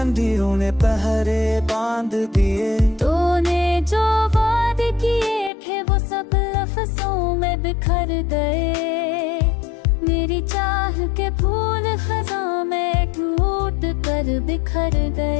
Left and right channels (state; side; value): drops out; right; at 5.5 s